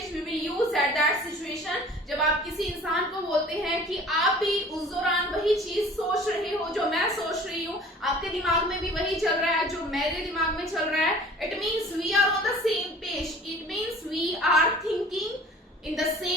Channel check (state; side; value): normal; both; correlation 0.47